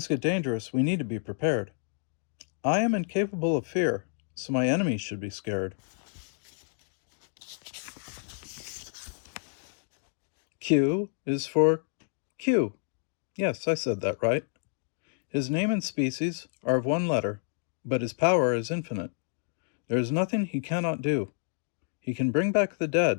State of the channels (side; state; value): right; silent; digital silence